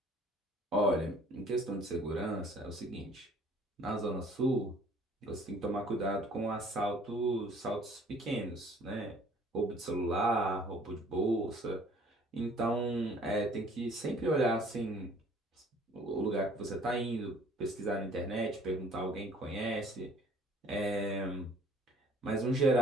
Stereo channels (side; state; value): both; normal; correlation 0.55